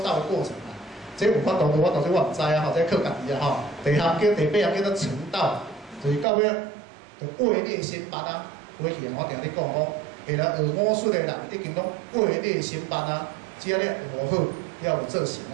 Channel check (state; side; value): drops out; left; at 6.2 s